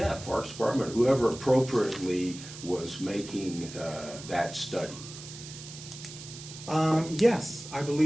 Parks Department, whoever appropriately was making that study. Yes, I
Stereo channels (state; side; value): noise; right; hiss, 14 dB below the sound